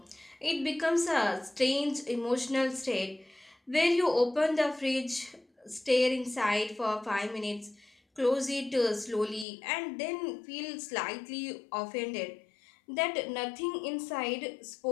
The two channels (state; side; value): drops out; right; at 9.5 s